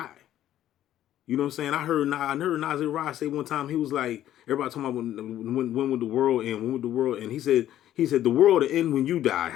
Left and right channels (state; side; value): quieter; right; 12.2 dB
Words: You know what I'm saying? I heard Nasir Rod say one time, he was like, everybody talking about when would the world end? When would the world end? He said the world will end when you die.